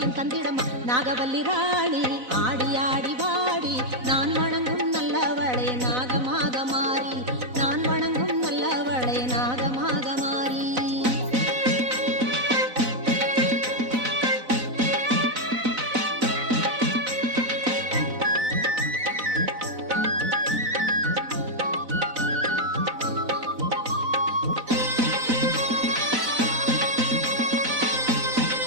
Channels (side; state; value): left; late; 4.0 ms